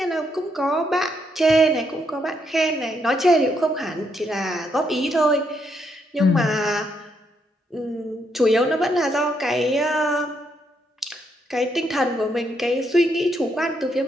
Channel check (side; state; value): both; normal; correlation 0.76